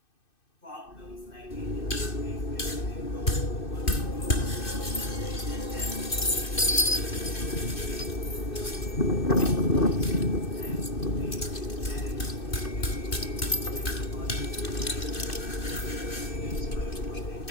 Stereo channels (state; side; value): late; right; 2.6 ms